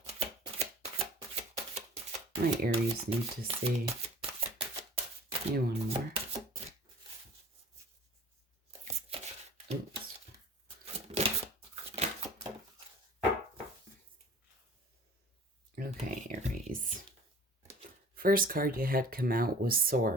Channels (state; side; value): normal; both; correlation 0.45